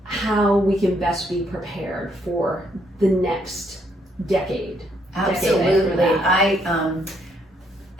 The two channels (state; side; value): normal; both; correlation 0.72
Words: how we can best be prepared for the next decade. Absolutely.